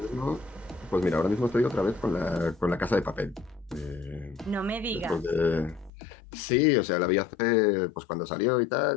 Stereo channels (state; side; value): drops out; right; at 5.9 s